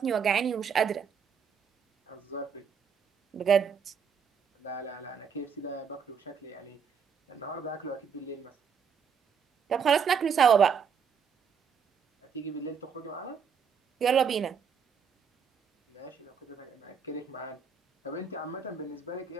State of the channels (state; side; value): quieter; left; 6.6 dB